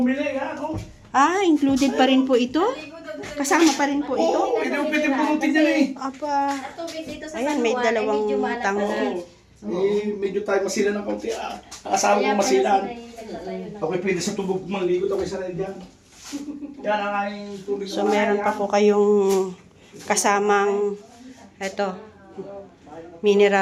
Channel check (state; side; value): identical; both; correlation 1.00